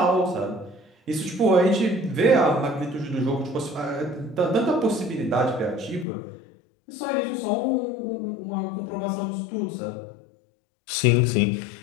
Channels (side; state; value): right; drops out; at 6.1 s